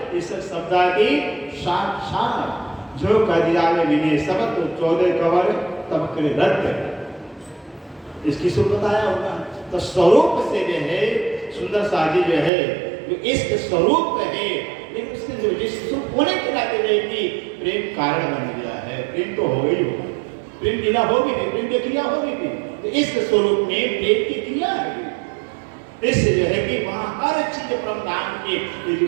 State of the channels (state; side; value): drops out; left; at 12.5 s